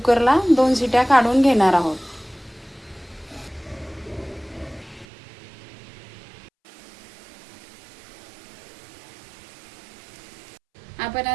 2 शिट्या काढून घेणार आहोत। आपण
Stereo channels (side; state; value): left; drops out; at 5.1 s